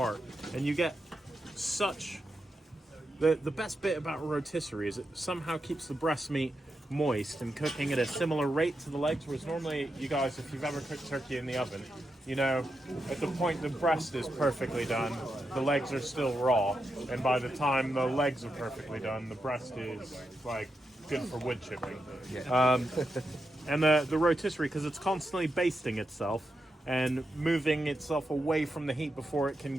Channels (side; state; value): both; normal; correlation 0.86